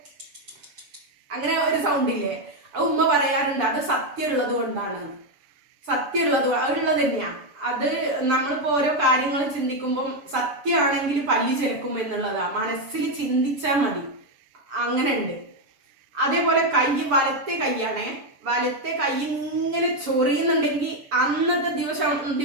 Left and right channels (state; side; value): late; left; 6.9 ms